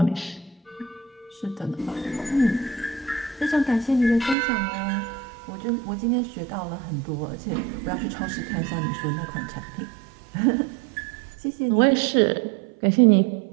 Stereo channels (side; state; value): left; drops out; at 4.4 s